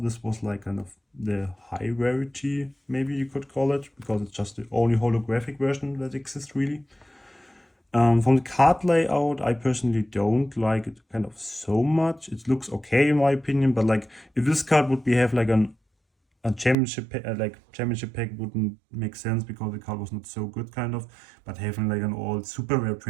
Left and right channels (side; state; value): left; drops out; at 16.8 s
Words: this was like kind of the high rarity, maybe you could call it, because it's just the only holographic version that exists really. From the card layout, I personally don't like it kind of so much. It looks okay in my opinion, but like if this card would have like a championship pack wouldn't make sense, because the card was not so good kind of. But having like an all super rare